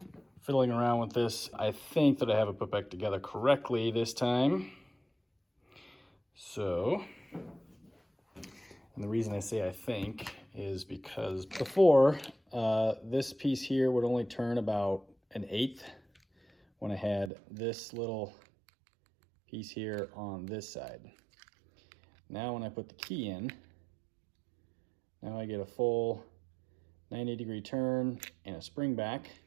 fiddling around with this, I think that I have it put back together correctly this time. So, and the reason I say I think is because before, this piece here would only turn about 1/8 when I had this little piece here on this side. Now when I put the key in, now I get a full 90-degree turn and a spring back.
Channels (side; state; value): left; drops out; at 17.3 s